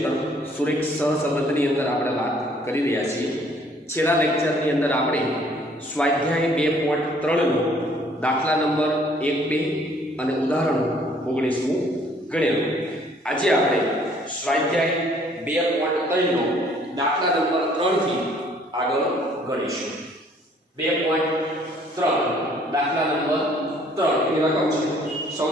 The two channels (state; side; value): normal; both; correlation 0.60